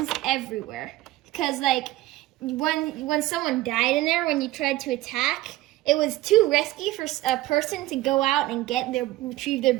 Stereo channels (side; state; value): left; quieter; 17.0 dB